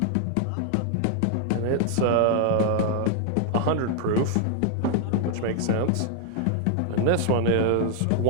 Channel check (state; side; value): different; both; correlation 0.00